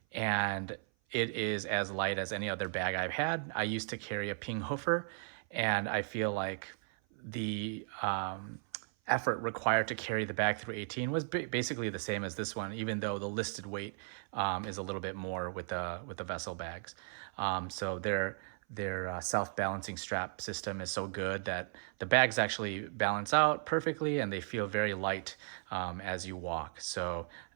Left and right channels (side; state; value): left; silent; 54 dB below the other